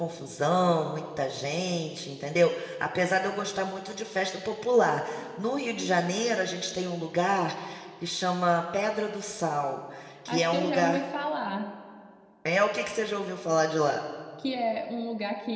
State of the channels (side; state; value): both; identical; correlation 1.00